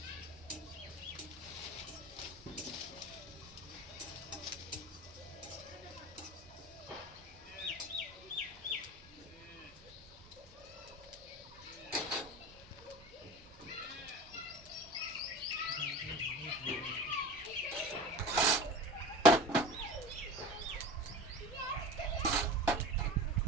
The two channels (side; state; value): both; normal; correlation 0.34